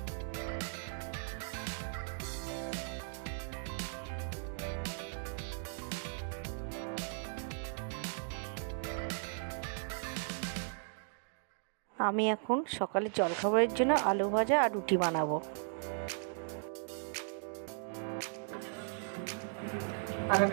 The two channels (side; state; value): left; silent; digital silence